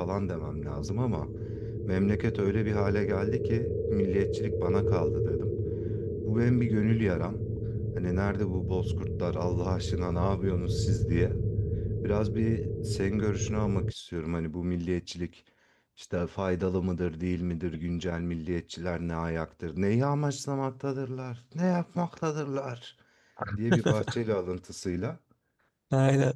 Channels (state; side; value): identical; both; correlation 1.00